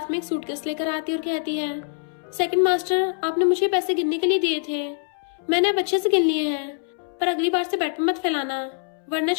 में एक सूटकेस लेकर आती और कहती है, सेकंड मास्टर आपने मुझे पैसे गिनने के लिए दिए थे, मैंने अब अच्छे से गिन लिए हैं, पर अगली बार से बेड पे मत फैलाना वरना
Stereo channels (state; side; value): silent; right; 63 dB below the other